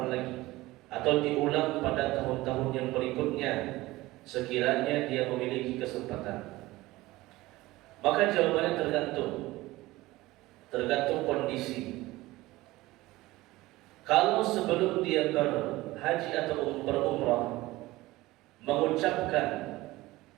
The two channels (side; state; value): left; quieter; 18.8 dB